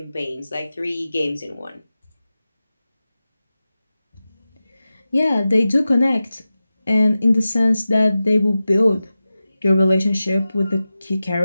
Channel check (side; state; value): both; inverted; correlation -0.94